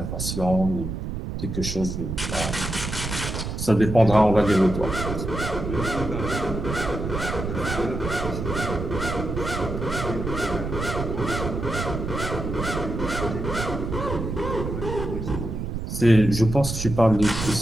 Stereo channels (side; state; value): right; noise; rumble, 4 dB below the sound